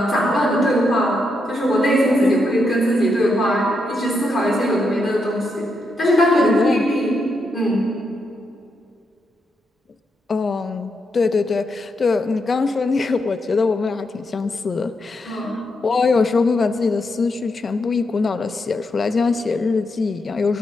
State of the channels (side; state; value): both; normal; correlation 0.82